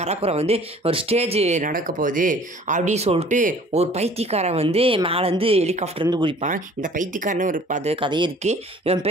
கடற்கரை ஒரு ஸ்டேஜ் நடக்க போகுது அப்படின்னு சொல்லிட்டு ஒரு பைத்தியக்காரன் மேலேருந்து ஹெலிகாப்டர்லேருந்து குதிப்பான். இந்த பைத்தியக்காரன்னு ஒரு கதையே இருக்குது. இவன்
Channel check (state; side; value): normal; both; correlation 0.51